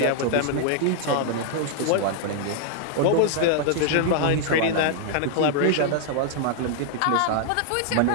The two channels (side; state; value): both; different; correlation 0.00